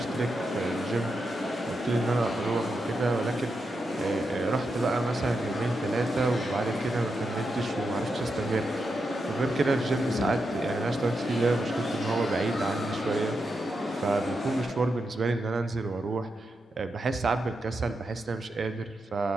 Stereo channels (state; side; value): normal; both; correlation 0.86